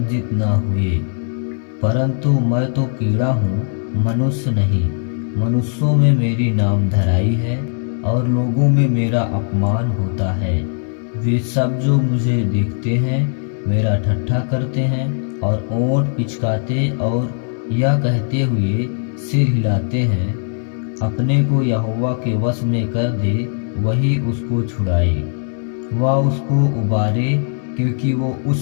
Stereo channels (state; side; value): silent; right; 67 dB below the other